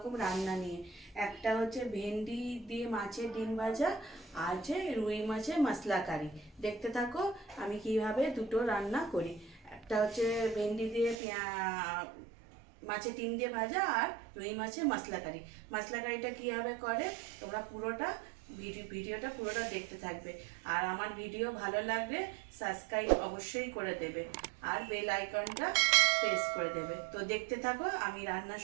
রান্না নিয়ে। একটা হচ্ছে ভেন্ডি দিয়ে মাছের ডিম ভাজা, আর হচ্ছে রুই মাছের মশলা কারি। দেখতে থাকো আমি কিভাবে দুটো রান্না করি। একটা হচ্ছে ভেন্ডি দিয়ে মাছের ডিম দিয়ে ভাজা, আর রুই মাছের মশলা কারি। মশলা কারিটা কীভাবে করে তোমরা পুরোটা ভিডিওটা পুরোটা দেখতে থাকবে। আর আমার ভিডিও ভালো লাগলে সাবস্ক্রাইব অবশ্যই করে দেবে, আর বেল আইকনটা প্রেস করে দেবে। তো দেখতে থাকো আমি রান্না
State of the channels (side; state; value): left; drops out; at 11.2 s